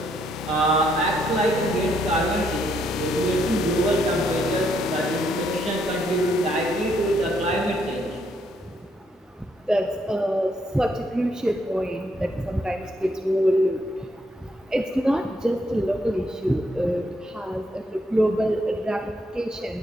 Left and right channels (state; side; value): normal; both; correlation 0.74